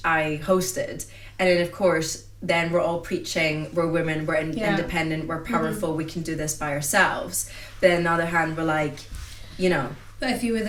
I hosted, and then of course then we're all preaching we're women, we're independent, we're powerful, we can do this by ourselves. But on the other hand, we're like, you know, But if you were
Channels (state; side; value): identical; both; correlation 1.00